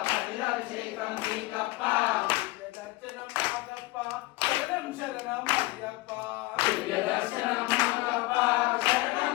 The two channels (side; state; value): right; quieter; 20.8 dB